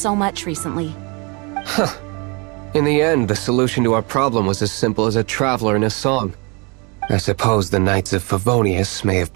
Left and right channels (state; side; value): quieter; left; 30.9 dB